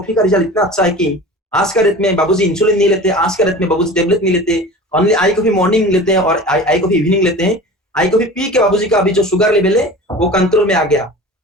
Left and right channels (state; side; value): normal; both; correlation 0.37